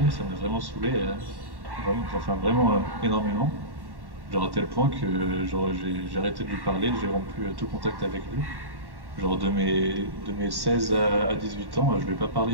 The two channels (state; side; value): late; left; 1.1 ms